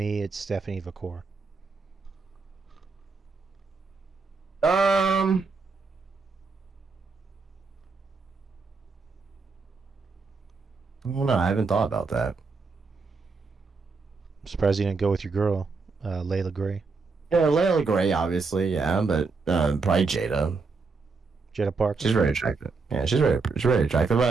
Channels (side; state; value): left; quieter; 4.4 dB